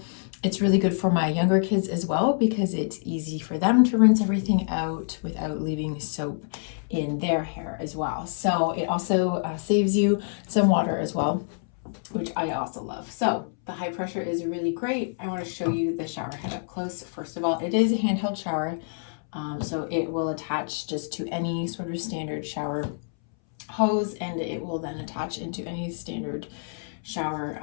It's really good for my younger kids as well because it's easy for them to rinse everything out without leaving soap in their hair as well. So it also saves you some water as well, which I also love. So the high pressure is really great. I want to show you the shower head up close. First of all, it is a handheld shower, so it will attach just to any sort of standard shower hose, and it will then attach into any standard shower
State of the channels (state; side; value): silent; right; 60 dB below the other